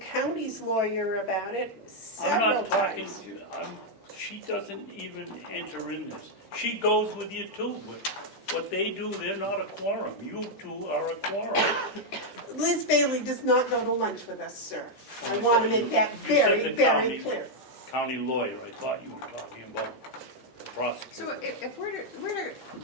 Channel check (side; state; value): both; normal; correlation -0.01